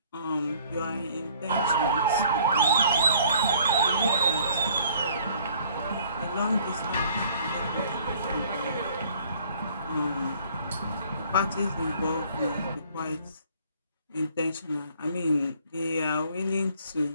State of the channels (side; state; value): both; inverted; correlation -0.57